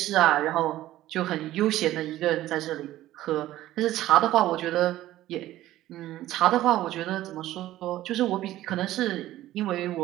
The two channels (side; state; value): left; quieter; 14.7 dB